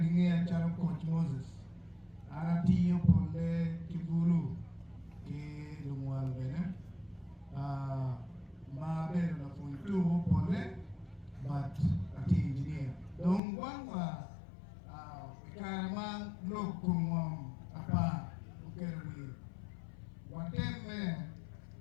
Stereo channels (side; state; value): right; drops out; at 13.4 s